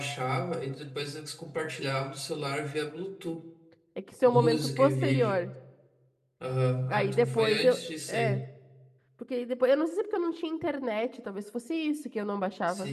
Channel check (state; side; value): identical; both; correlation 1.00